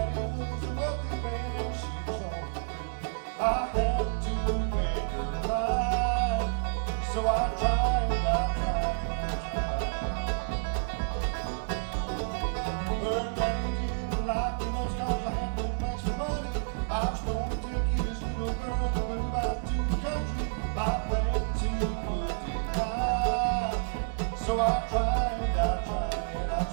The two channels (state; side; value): silent; left; digital silence